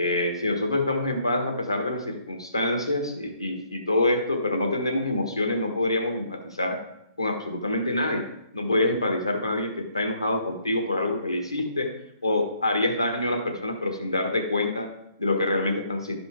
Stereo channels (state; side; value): inverted; both; correlation -0.68